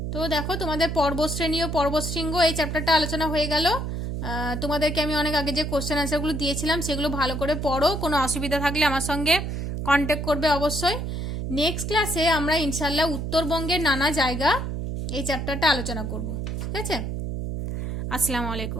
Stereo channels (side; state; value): right; noise; hum, 3 dB below the sound